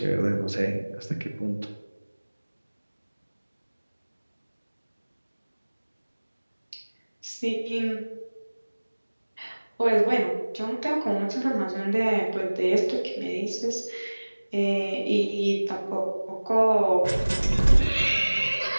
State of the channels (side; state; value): both; inverted; correlation -1.00